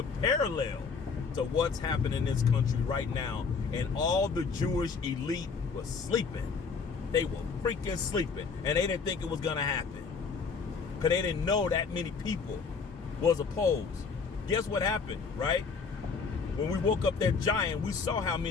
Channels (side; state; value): right; quieter; 5.2 dB